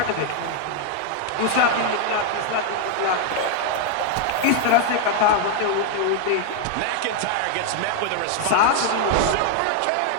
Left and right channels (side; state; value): both; different; correlation 0.00